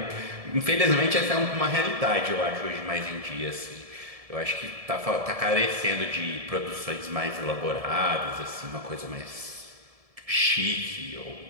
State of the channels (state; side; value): late; left; 1.7 ms